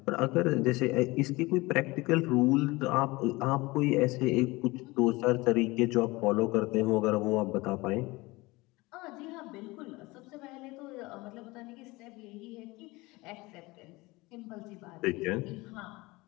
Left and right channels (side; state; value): right; quieter; 22.3 dB